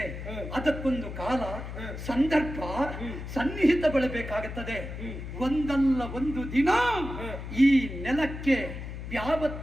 ಅದಕ್ಕೊಂದು ಕಾಲ, ಸಂದರ್ಭ, ಸನ್ನಿಹಿತ ಬಳಬೇಕಾಗುತ್ತದೆ. ಒಂದಲ್ಲ ಒಂದು ದಿನ ಈ ನೆಲಕ್ಕೆ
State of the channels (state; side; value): noise; left; hum, 8 dB below the sound